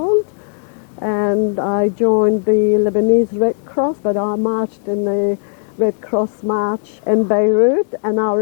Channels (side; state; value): right; silent; digital silence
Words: and I joined the Lebanese Red Cross, but I marched in the Red Cross march in Beirut, and I